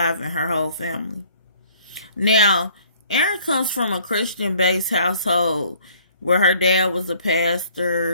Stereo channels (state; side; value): inverted; both; correlation -0.58